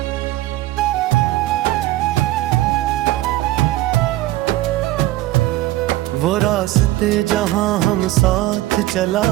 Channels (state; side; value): quieter; left; 16.5 dB